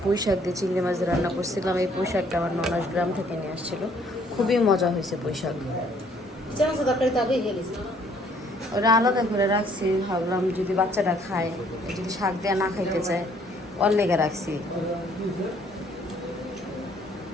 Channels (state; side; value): normal; both; correlation 0.62